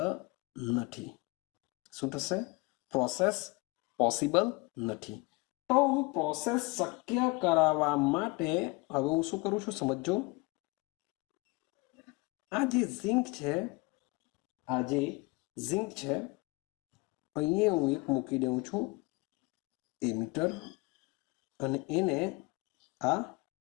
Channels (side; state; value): right; quieter; 25.7 dB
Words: નથી. શું થશે? પ્રોસેસ પોસિબલ નથી. તો હું પ્રોસેસ શક્ય કરાવવા માટે હવે હું શું કરું છું સમજો. આ જે ઝિંક છે અહીંયા હું એક મૂકી દઉં છું એમીટર, અને એને આ